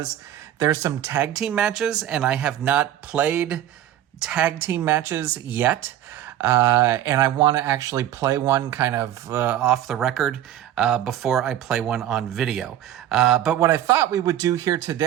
there's some tag team matches, and I have not played tag team matches yet. And I want to actually play one kind of off the record before I play one on video. But what I thought we would do here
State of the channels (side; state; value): left; quieter; 11.9 dB